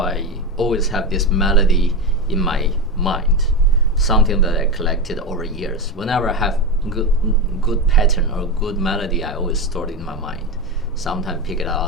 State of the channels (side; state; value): both; normal; correlation 0.15